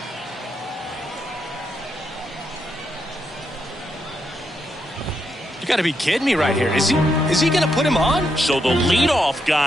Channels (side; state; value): both; normal; correlation 0.81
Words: You got to be kidding me right here. Is he going to put him on? So the leadoff